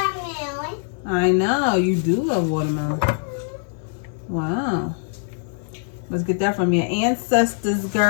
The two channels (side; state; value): right; silent; digital silence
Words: I know, you do love watermelon. Wow. Let's get that from your ancestors,